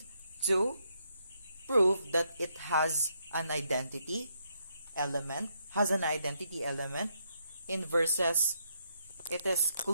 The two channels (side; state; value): both; inverted; correlation -0.77